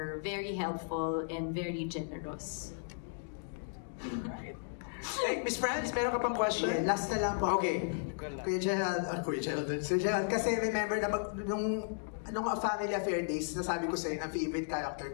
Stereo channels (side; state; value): right; silent; digital silence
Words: very helpful and very generous. Hey, Miss Franz, meron ka pang question? Yeah, last na lang po. Okay. Kuya Gerald, kasi remember na nung Family Affair Days, nasabi ko sa'yo na favorite character